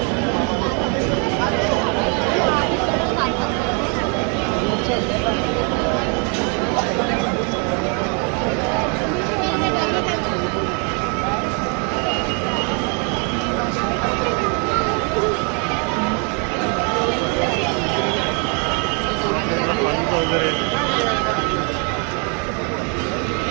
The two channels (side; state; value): left; quieter; 36.7 dB